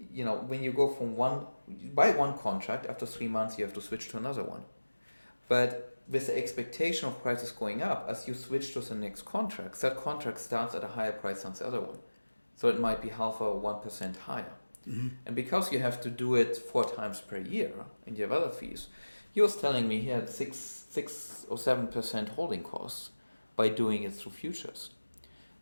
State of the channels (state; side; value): inverted; both; correlation -1.00